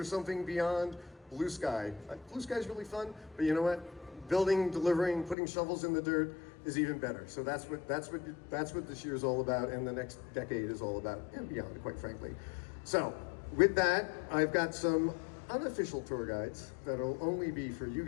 something beyond blue sky. Blue sky is really fun, but you know what? Building, delivering, putting shovels in the dirt is even better. So that's what this year is all about, and the next decade is all about, and beyond, quite frankly. So with that, I've got some unofficial tour guides that'll only be for you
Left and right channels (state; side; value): drops out; right; at 5.4 s